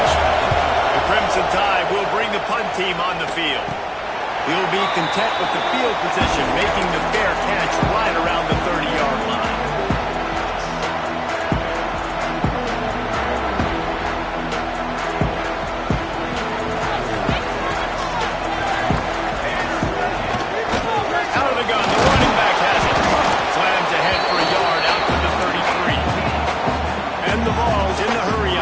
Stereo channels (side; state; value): both; identical; correlation 1.00